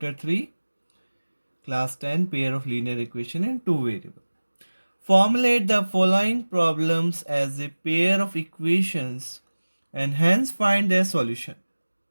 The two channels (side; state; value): both; inverted; correlation -1.00